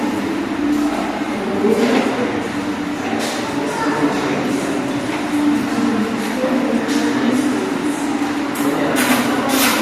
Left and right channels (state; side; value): identical; both; correlation 1.00